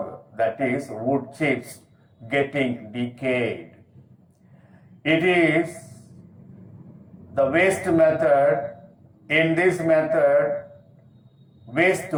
that is wood chips, getting decayed. It is the waste method. In this method, waste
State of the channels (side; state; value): both; identical; correlation 1.00